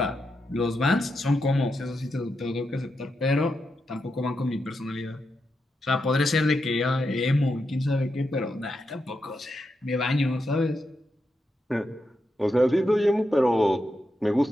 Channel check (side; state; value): both; normal; correlation 0.85